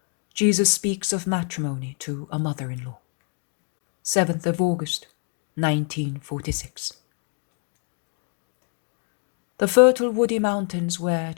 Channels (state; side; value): quieter; right; 40.0 dB